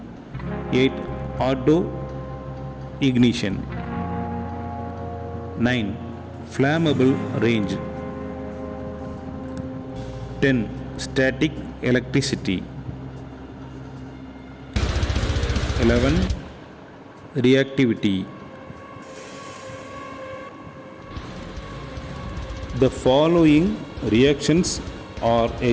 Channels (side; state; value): both; identical; correlation 1.00